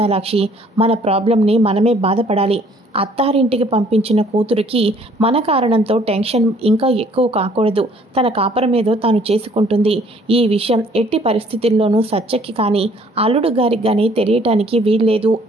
మన ప్రాబ్లంని మనమే బాధపడాలి, అత్తారింటికి పంపించిన కూతురికి మన కారణంతో టెన్షన్ ఇంకా ఎక్కువ కాకూడదు, తన కాపురం ఏదో తాను చేసుకుంటుంది, ఈ విషయం ఎట్టి పరిస్థితుల్లోనూ సత్యకి కానీ అల్లుడు గారికి కానీ తెలియటానికి వీల్లేదు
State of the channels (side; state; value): both; normal; correlation 0.60